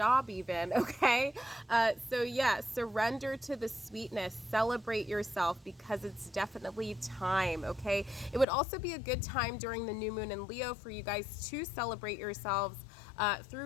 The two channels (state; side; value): drops out; right; at 8.5 s